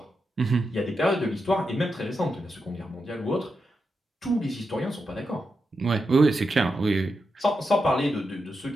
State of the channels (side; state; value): both; normal; correlation 0.87